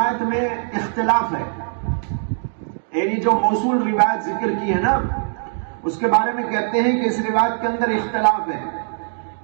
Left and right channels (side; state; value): left; silent; digital silence